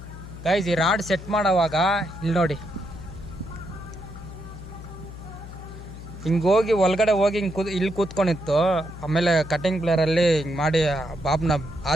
ಗಾಯ್ಸ್, ಇಲ್ಲಿ ನೋಡಿ, ಹಿಂಗೆ ಹೋಗಿ ಒಳಗಡೆ ಹೋಗಿ ಇಲ್ಲಿ ಕೂತ್ಕೊಂಡಿತ್ತು. ಆಮೇಲೆ ಕಟಿಂಗ್ ಪ್ಲೇಯರಲ್ಲಿ ಹಿಂಗೆ ಮಾಡಿ ಬಾಬ್ನ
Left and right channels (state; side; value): noise; left; hum, 13 dB below the sound